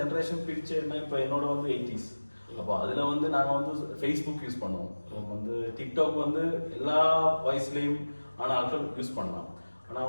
பிரிச்சேன்னா, இப்போ என்னோட 80s. அப்போ அதில் நாங்கள் ஃபேஸ்புக் யூஸ் பண்ணுவோம். டிக்டாக் எல்லா வயசுலேயும் ஆன ஆட்கள் யூஸ் பண்ணலாம்.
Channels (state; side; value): inverted; both; correlation -1.00